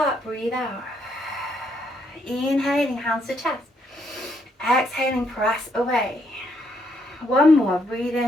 breathe out. Inhaling, hands to chest. Exhaling, press away. One more, breathe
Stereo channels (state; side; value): normal; both; correlation 0.73